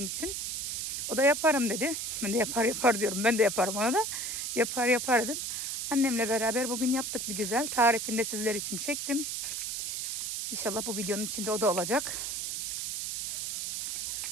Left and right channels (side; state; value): right; noise; hiss, 3 dB below the sound